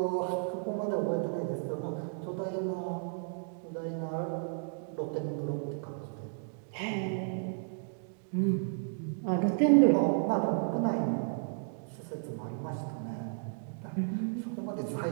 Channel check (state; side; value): silent; left; 56 dB below the other